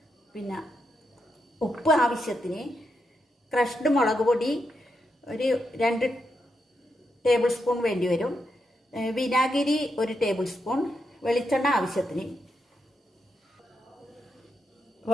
പിന്നെ ഉപ്പ് ആവശ്യത്തിന്, ക്രഷ്ഡ് മുളക് പൊടി ഒരു 2 ടേബിൾ സ്പൂൺ വേണ്ടി വരും, വിനാഗിരി 1 ടേബിൾ സ്പൂൺ, വെളിച്ചെണ്ണ ആവശ്യത്തിന്.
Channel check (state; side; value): normal; both; correlation 0.84